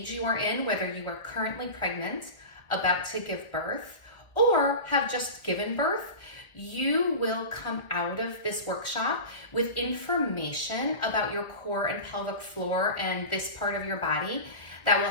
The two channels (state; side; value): late; right; 1.6 ms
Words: you are in, whether you are currently pregnant, about to give birth, or have just given birth, you will come out of this workshop with information about your core and pelvic floor and this part of your body that will